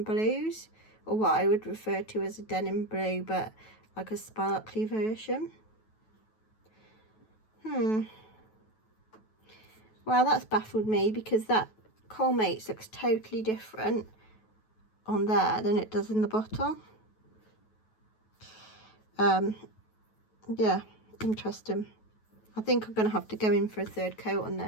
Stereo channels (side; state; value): right; late; 9.2 ms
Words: blues, or what I would refer to as a denim blue, but like a sparkly version. Well, that's baffled me, because that Colmates looks totally different on there than it does in the bottle. Yeah, interesting. I think I'm going to have to go in for a third coat on